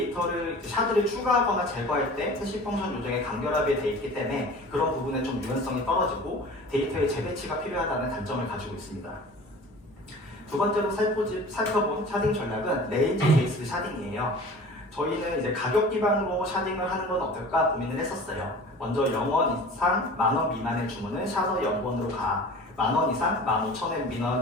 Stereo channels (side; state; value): both; normal; correlation 0.41